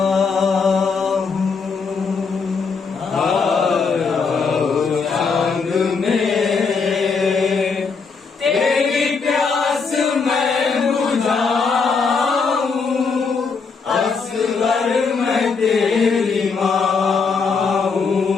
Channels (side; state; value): right; quieter; 5.1 dB